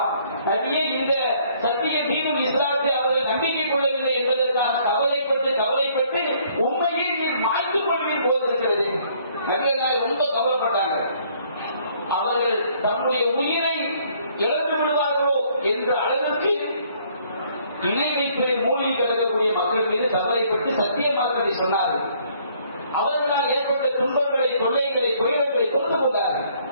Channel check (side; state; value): both; inverted; correlation -0.63